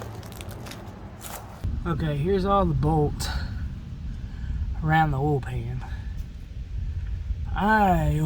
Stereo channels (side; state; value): both; identical; correlation 1.00